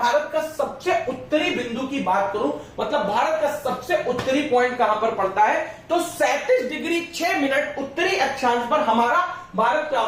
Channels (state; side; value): identical; both; correlation 1.00